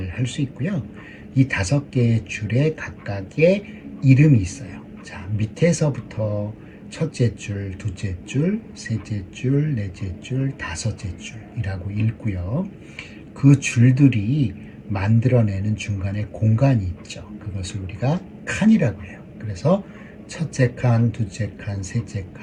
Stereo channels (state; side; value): identical; both; correlation 1.00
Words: 할 수 있고요. 이 5개의 줄에 각각의 이름이 있어요. 자, 밑에서부터 첫째 줄, 둘째 줄, 셋째 줄, 넷째 줄, 다섯째 줄이라고 읽고요. 그 줄들이 만들어내는 중간에 공간이 있죠. 그것을 우리가 칸이라고 해요. 그래서 첫째 칸, 둘째 칸, 셋째